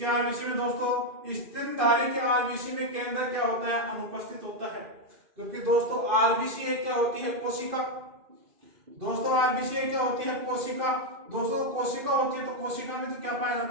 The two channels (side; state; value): left; late; 2.5 ms